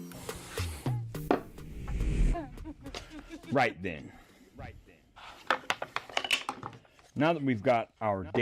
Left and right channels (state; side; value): identical; both; correlation 1.00